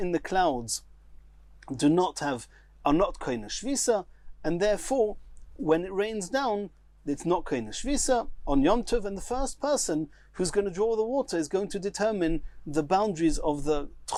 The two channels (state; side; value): identical; both; correlation 1.00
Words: the clouds are not kaina shvisa, and therefore, when it rains down, it's not kaina shvisa on Yom Tov, and the first person who's going to draw the water is going to determine the boundaries of the